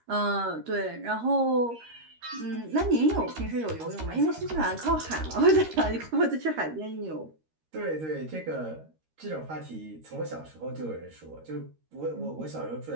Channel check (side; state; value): left; late; 13 ms